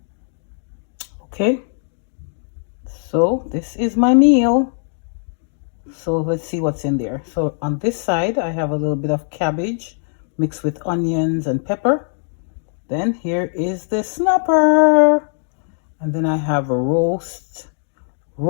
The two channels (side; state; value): right; silent; digital silence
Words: Okay. So this is my meal. So let's see what's in there. So on this side, I have a little bit of cabbage mixed with onions and pepper. Then here is the snapper. And then I have a